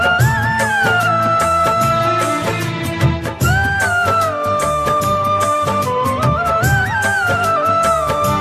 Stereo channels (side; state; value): both; identical; correlation 1.00